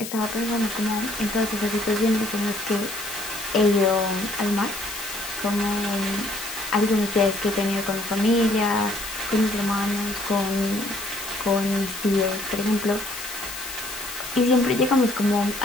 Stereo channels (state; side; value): noise; left; hiss, 9 dB below the sound